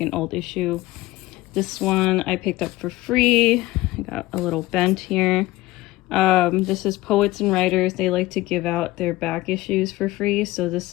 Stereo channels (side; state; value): right; quieter; 18.5 dB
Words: old issue. This one I picked up for free. I got a little bent here. This is Poets and Writers. They like to give out their back issues for free. So this